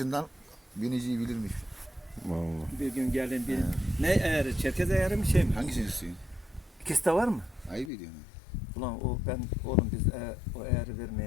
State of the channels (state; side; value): drops out; right; at 7.9 s